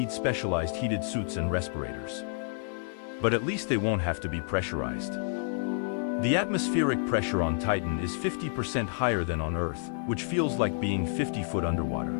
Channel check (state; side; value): silent; right; 58 dB below the other